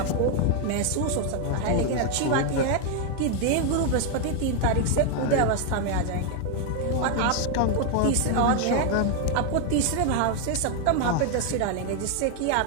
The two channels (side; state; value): both; different; correlation 0.01